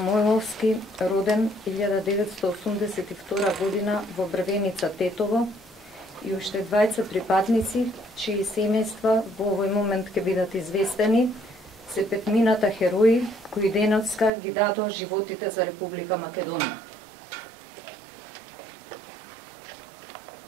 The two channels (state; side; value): drops out; left; at 14.3 s